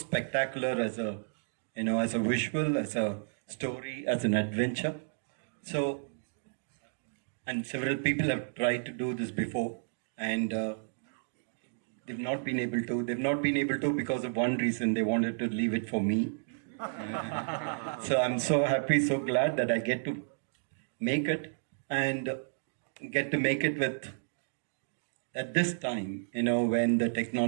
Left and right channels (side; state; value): left; silent; digital silence